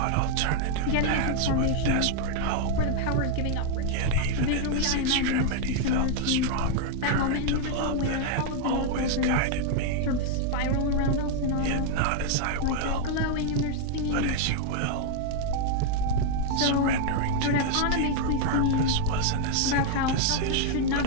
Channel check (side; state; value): both; different; correlation 0.00